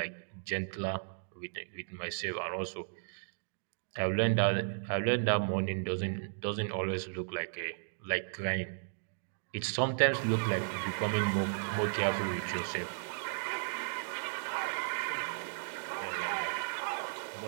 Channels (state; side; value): silent; left; digital silence